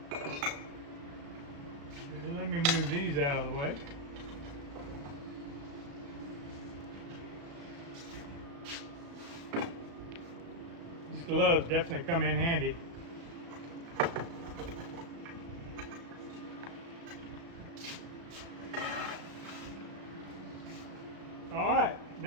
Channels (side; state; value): left; late; 35 ms